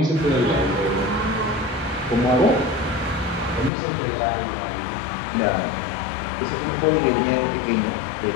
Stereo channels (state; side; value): drops out; right; at 3.7 s